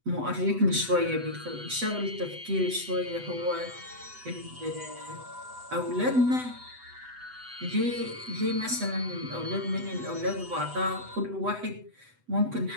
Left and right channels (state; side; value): late; left; 8.0 ms